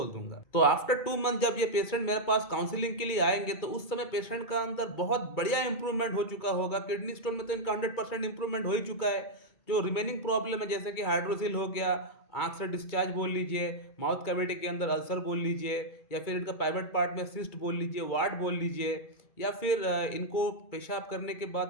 दूंगा। तो आफ्टर 2 मंथ जब ये पेशेंट मेरे पास काउंसलिंग के लिए आएंगे तो उस समय पेशेंट का अंदर बहुत बढ़िया इंप्रूवमेंट हो चुका होगा। किडनी स्टोन में तो इनका 100% इंप्रूवमेंट हो ही चुका है। जो रिमेनिंग प्रॉब्लम है जैसे कि हाइड्रोसिल हो गया, आंख से डिस्चार्ज बोल लीजिए, माउथ कैविटी के अंदर अल्सर बोल लीजिए, या फिर इनका प्राइवेट पार्ट में सिस्ट बोल लीजिए, वार्ड बोल लीजिए, या फिर इनको पेशाब करने के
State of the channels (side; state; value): right; late; 2.2 ms